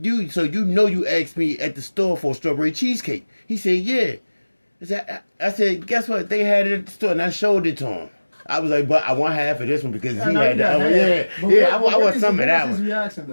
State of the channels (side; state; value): both; inverted; correlation -1.00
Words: so you know you asked me at the store for strawberry cheesecake. He said, yeah. I said, guess what? They had it at the store, and I showed it to him. I was like, but I want half of this one because he had that. I want some of that one. His reaction,